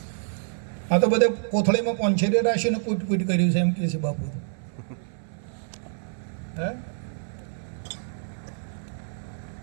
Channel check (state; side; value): silent; left; 60 dB below the other